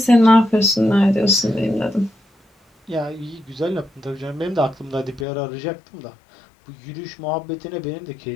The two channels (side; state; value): right; drops out; at 5.2 s